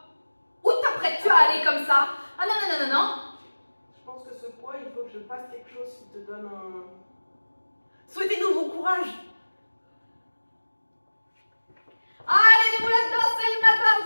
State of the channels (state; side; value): inverted; both; correlation -1.00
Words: Où t'apprêtes-tu à aller comme ça? Ah non, non, non, non, non. Je pense que ce poids, il faut que je fasse quelque chose qui te donne un... Souhaitez-nous bon courage. Allez, les boulettes, c'est le matin,